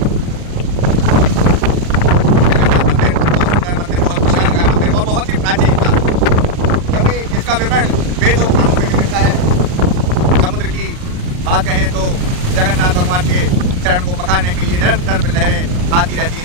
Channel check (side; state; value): left; late; 39 ms